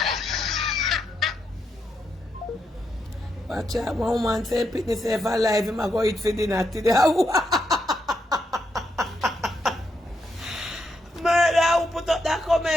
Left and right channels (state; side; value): normal; both; correlation 0.81